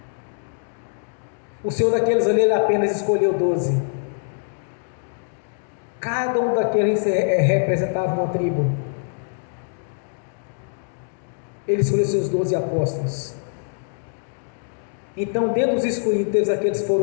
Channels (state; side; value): silent; right; digital silence